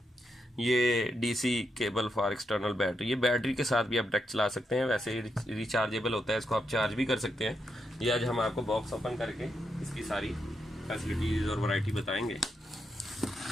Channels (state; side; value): normal; both; correlation 0.83